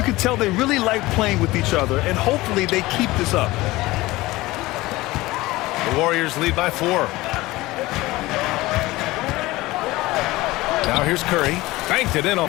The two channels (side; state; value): right; quieter; 19.4 dB